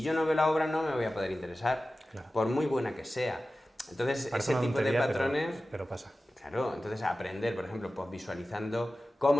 yo no veo la obra no me voy a poder interesar, por muy buena que sea. Entonces, parece ese tipo de patrones... Pero pasa. Claro, entonces aprender, por ejemplo, pues visualizando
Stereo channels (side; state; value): both; normal; correlation 0.95